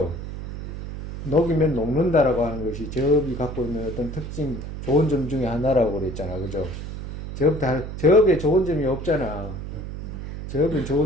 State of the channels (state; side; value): noise; right; hum, 8 dB below the sound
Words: 녹이면 녹는다라고 하는 것이 죄업이 갖고 있는 어떤 특징, 좋은 점 중에 하나라고 그랬잖아. 그죠? 죄업에 좋은 점이 없잖아. 제업에